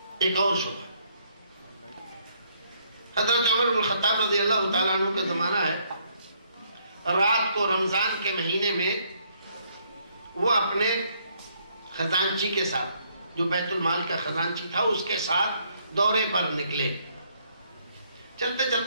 شبہ، حضرت عمر بن الخطاب رضی اللہ تعالیٰ عنہ کا زمانہ ہے، رات کو رمضان کے مہینے میں وہ اپنے خزانچی کے ساتھ، جو بیت المال کا خزانچی تھا، اس کے ساتھ دورے پر نکلے. چلتے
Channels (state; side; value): inverted; both; correlation -0.69